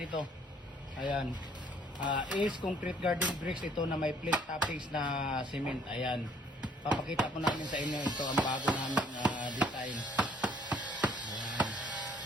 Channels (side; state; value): both; normal; correlation 0.61